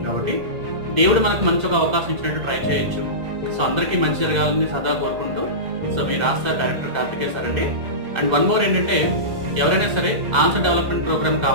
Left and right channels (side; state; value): left; late; 2.0 ms